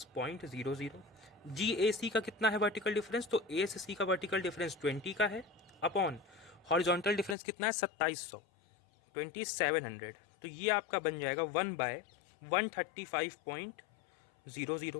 जी ए सी का कितना है वर्टिकल डिफरेंस? तो ए से सी का वर्टिकल डिफरेंस 20 का है, अपॉन हॉरिजॉन्टल डिफरेंस कितना है? 2700, 2700। तो ये आपका बन जाएगा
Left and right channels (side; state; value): right; drops out; at 7.4 s